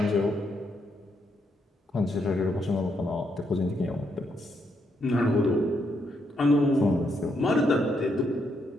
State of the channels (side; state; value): both; normal; correlation 0.77